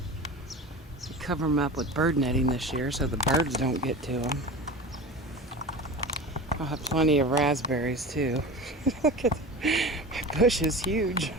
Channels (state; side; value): normal; both; correlation 0.32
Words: We cover them up with bird netting this year so the birds don't get to them. I'll have plenty of raspberries too. Look at my bush is huge.